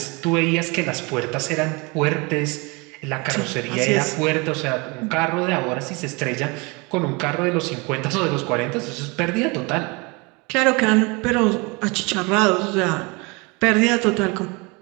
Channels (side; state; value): left; quieter; 27.9 dB